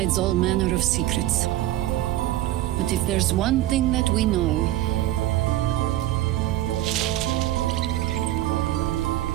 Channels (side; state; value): left; quieter; 14.4 dB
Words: all manner of secrets. But if there's one thing that we know,